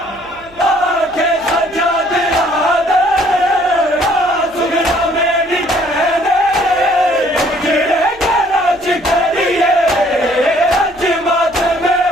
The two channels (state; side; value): noise; right; hum, 26 dB below the sound